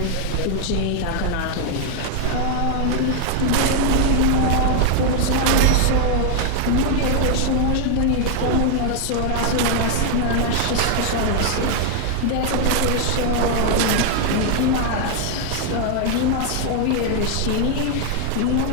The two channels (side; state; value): both; different; correlation 0.00